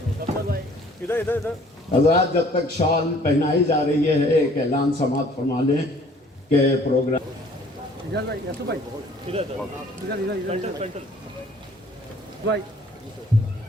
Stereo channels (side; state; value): both; normal; correlation 0.56